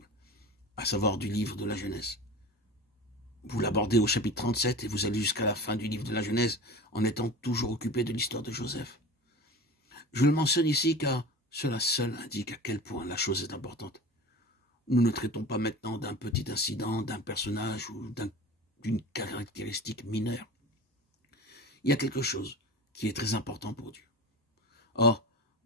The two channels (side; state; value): both; normal; correlation 0.33